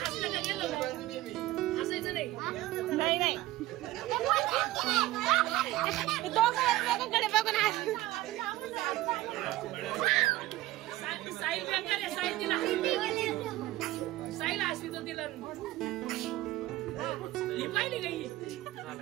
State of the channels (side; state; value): left; quieter; 16.8 dB